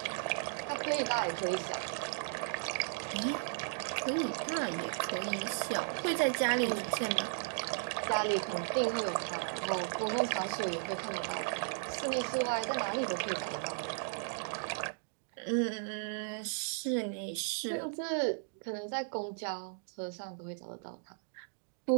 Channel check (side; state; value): left; silent; digital silence